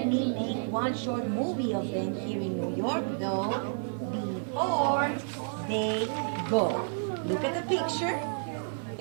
me make one short movie of them here in New York, though, before they go. Look at the picture.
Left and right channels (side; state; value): left; silent; digital silence